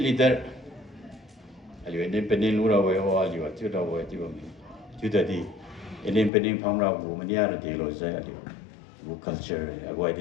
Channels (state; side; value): drops out; right; at 6.3 s